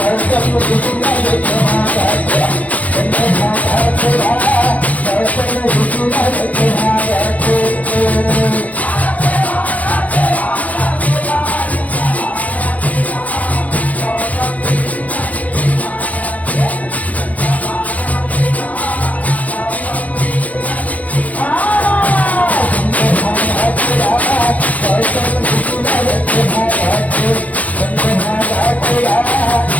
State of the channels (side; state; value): right; late; 0.073 ms